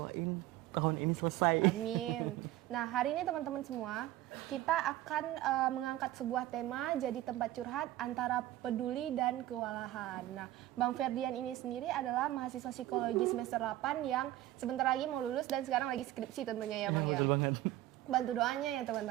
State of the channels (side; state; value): left; quieter; 15.0 dB